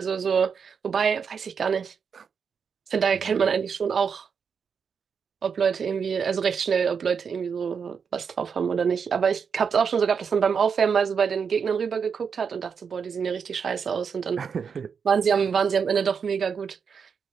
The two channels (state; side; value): quieter; left; 6.4 dB